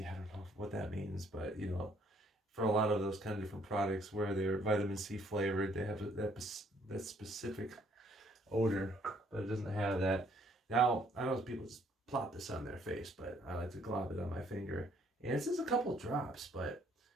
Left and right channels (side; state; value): both; normal; correlation 0.65